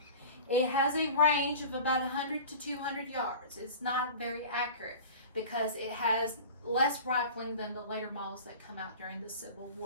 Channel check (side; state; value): both; inverted; correlation -0.38